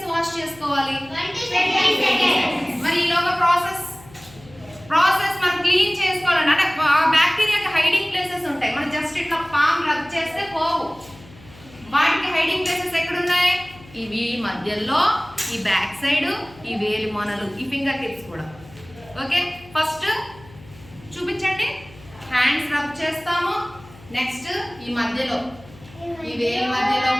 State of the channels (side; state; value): left; noise; hum, 22 dB below the sound